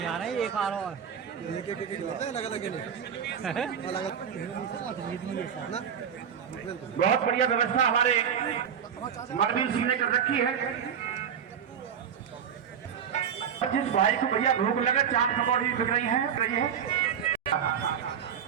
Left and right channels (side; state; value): left; quieter; 8.0 dB